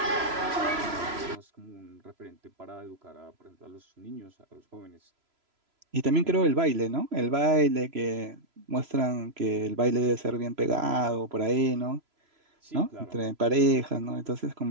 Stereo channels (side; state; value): left; late; 3.0 ms